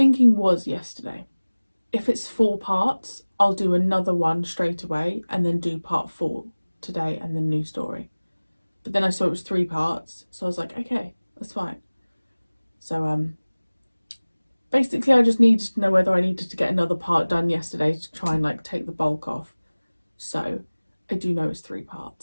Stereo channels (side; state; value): both; inverted; correlation -1.00